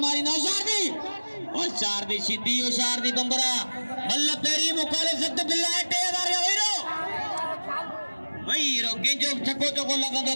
मारी ना होशियार दी सीधी होशियार दी बम्बरा मल्ल पेरी मुकाले सख्त बिल्ला 3000 वहीरो केंजो छक्को चोको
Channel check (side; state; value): both; inverted; correlation -1.00